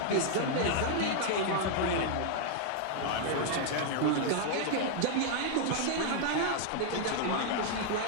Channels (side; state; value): both; different; correlation 0.00